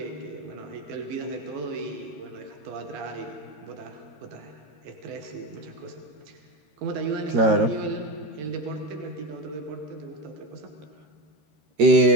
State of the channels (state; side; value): late; left; 13 ms